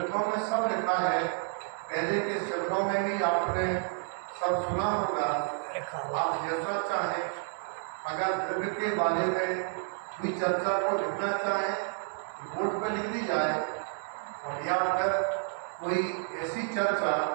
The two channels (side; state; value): left; silent; 58 dB below the other